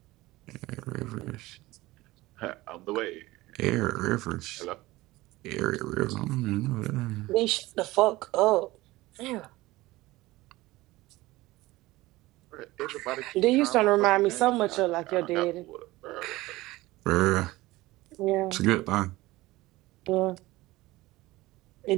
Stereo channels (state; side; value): quieter; left; 19.0 dB